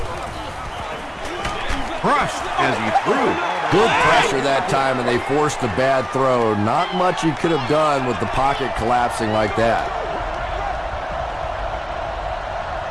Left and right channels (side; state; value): both; identical; correlation 1.00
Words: Crushed as he threw. Good pressure that time, and they forced a bad throw. Not much he could have done with the pocket collapsing like that.